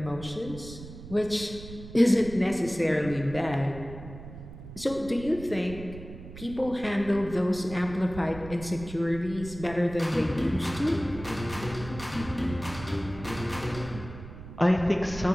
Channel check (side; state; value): right; noise; rumble, 13 dB below the sound